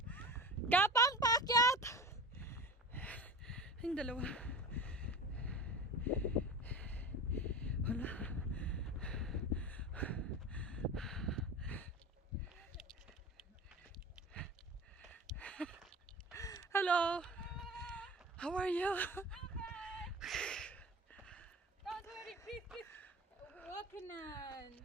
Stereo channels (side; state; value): both; normal; correlation 0.33